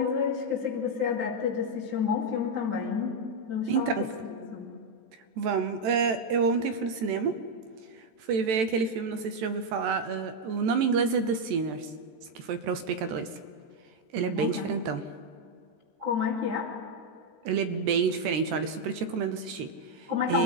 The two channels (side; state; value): left; late; 14 ms